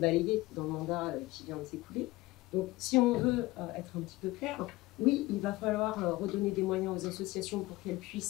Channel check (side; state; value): right; quieter; 19.8 dB